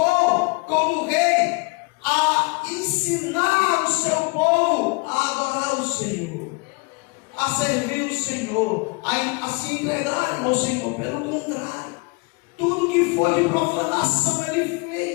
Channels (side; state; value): right; quieter; 29.1 dB